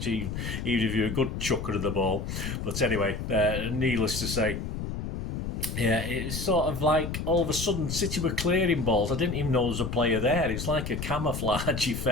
even if you're a good chucker of the ball. But anyway, needless to say, yeah, it's sort of like all of a sudden City were clearing balls. I didn't even know there was a player there. It's like a camouflage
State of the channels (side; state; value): left; noise; rumble, 4 dB below the sound